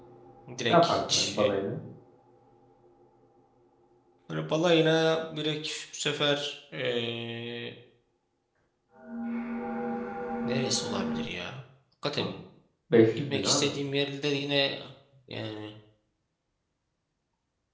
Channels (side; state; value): both; identical; correlation 1.00